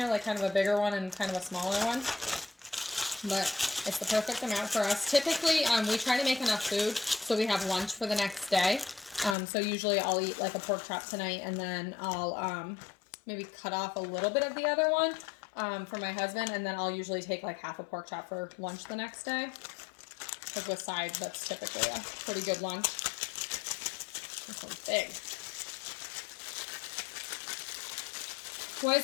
like kind of a bigger one and kind of a smaller one. But it's the perfect amount for us. Typically, we try to make enough food so we have lunch for the next day. So usually I'll eat like a pork chop tonight, and then I'll maybe cut off a little bit of the other one for my husband, and then I'll usually take like half a pork chop for lunch the next day. Because with sides, that's typically a pretty good lunch. This one's big. What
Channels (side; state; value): right; drops out; at 9.3 s